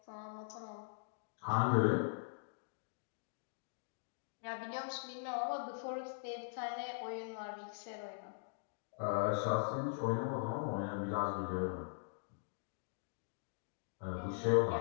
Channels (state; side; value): silent; right; digital silence